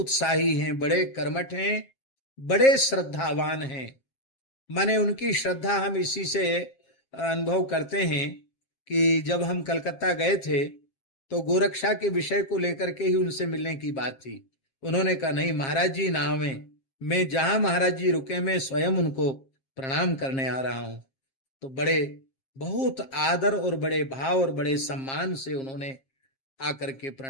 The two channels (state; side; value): late; right; 7.5 ms